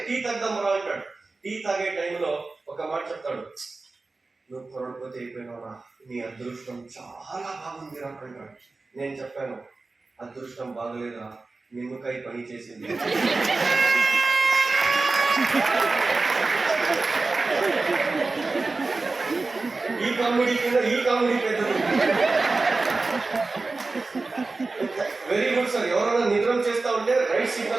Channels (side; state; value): left; quieter; 3.6 dB